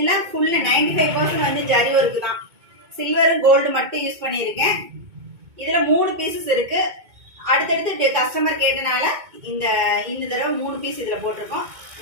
ஃபுல் 95% வந்து ஜரி ஒர்க் தான். சில்வர் கோல்டு மட்டும் யூஸ் பண்ணியிருக்கேன். இதுல 3 பீசஸ் இருக்கு. அடுத்தடுத்து கஸ்டமர் கேட்டனால இந்த தடவை 3 பீஸ் இதுல போட்டிருக்கோம்.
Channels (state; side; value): late; left; 2.2 ms